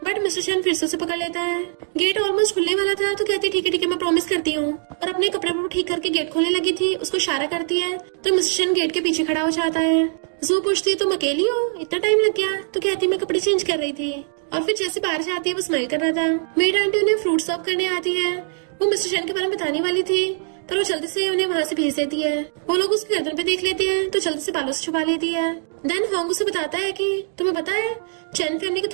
बट मिस्टर चैन फिर से उसे पकड़ लेता है। गेट ऑलमोस्ट खुलने वाला था तो कहती ठीक है मैं प्रॉमिस करती हूँ, और अपने कपड़े को ठीक करके गेट खोलने लगी थी। उसको इशारा करती है तो मिस्टर चैन गेट के पीछे खड़ा हो जाता है। जू पूछती है तुम अकेली हो, इतना टाइम लग गया? तो कहती मैं कपड़े चेंज कर रही थी। और फिर जैसे बाहर जाती है वो स्माइल कर रहा था। मेड आंटी उन्हें फ्रूट सर्व करने आती है। वो मिस्टर चैन के बारे में बताने वाली थी, पर वो जल्दी से उन्हें वहाँ से भेज देती है। वो लोग उसकी गर्दन पे देख लेते हैं तो जल्दी से बालों से छुपा लेती है। देन हॉन्ग उसे बताता है कि तुम्हें पता है चैन फैमिली के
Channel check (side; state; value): left; silent; 63 dB below the other